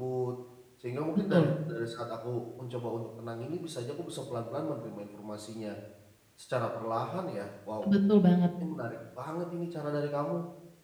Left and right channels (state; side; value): identical; both; correlation 1.00